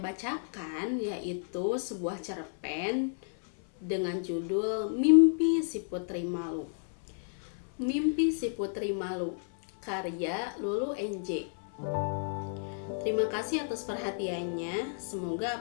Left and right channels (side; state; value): right; silent; 57 dB below the other